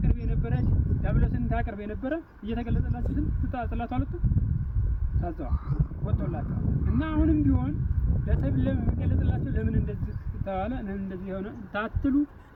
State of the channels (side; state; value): both; identical; correlation 1.00